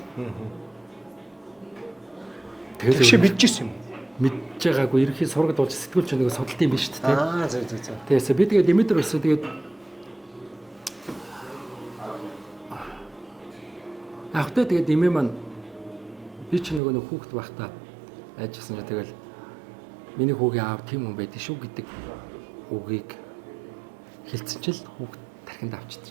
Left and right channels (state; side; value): drops out; left; at 16.8 s